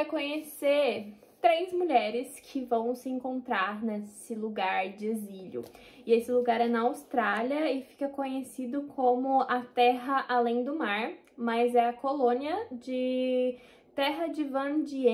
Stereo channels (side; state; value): both; identical; correlation 1.00